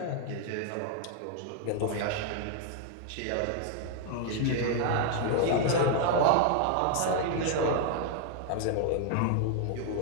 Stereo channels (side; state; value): both; different; correlation 0.00